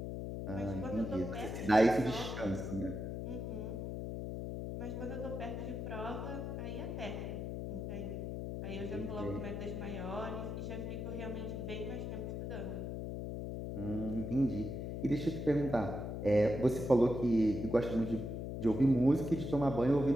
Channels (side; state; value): left; noise; hum, 4 dB below the sound